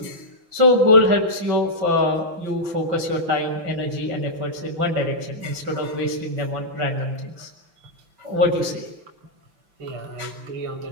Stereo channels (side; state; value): left; late; 5.9 ms